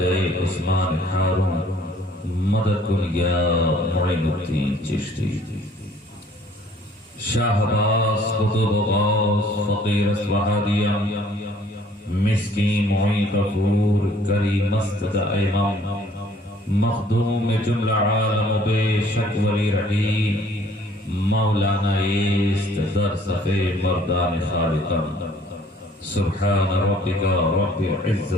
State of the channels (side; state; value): both; normal; correlation 0.58